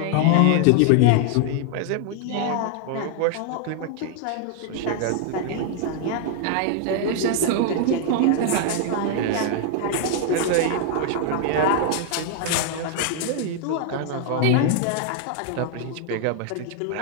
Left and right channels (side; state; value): both; different; correlation 0.00